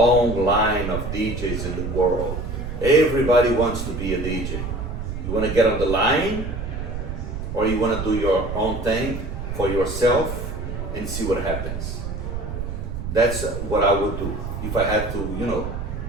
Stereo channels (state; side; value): noise; right; rumble, 5 dB below the sound